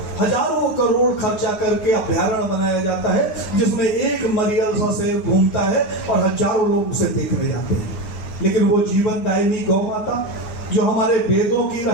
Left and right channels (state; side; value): late; right; 8.8 ms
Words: हजारों करोड़ खर्चा करके अभ्यारण्य बनाया जाता है जिसमें एक मरियल सा शेर घूमता है और हजारों लोग उसे देखने जाते हैं। लेकिन वो जीवन दायिनी गौ माता जो हमारे वेदों की